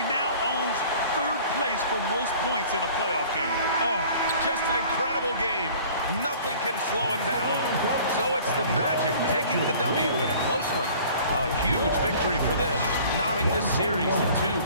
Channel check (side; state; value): both; inverted; correlation -0.48